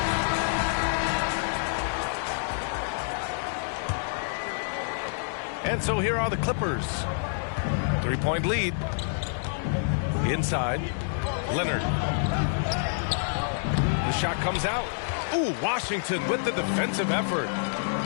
And so here are the Clippers. 3-point lead. Inside. Leonard. The shot comes out. Ooh, Washington with the defensive effort.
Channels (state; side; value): silent; right; digital silence